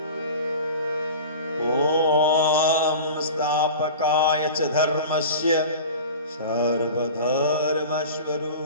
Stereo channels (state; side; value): inverted; both; correlation -0.35